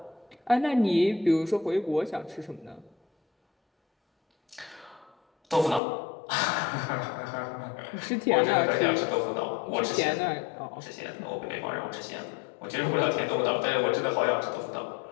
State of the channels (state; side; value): drops out; right; at 5.8 s